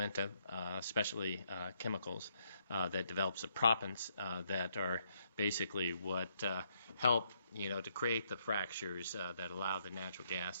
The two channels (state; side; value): inverted; both; correlation -0.74